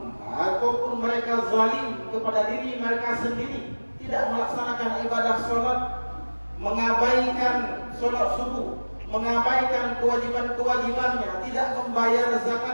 ataupun mereka zalim kepada diri mereka sendiri, tidak melaksanakan ibadah sholat, mengabaikan sholat subuh, mengabaikan kewajiban-kewajibannya, tidak membayar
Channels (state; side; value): inverted; both; correlation -1.00